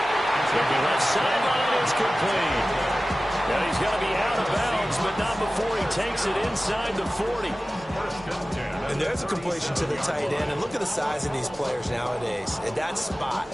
It's going to be left sideline. It's complete. Now he's got to be out of bounds, but not before he takes it inside the 40. And there's a completion to the tight end. And look at the size of these players nowadays. At that spot,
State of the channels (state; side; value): normal; both; correlation 0.96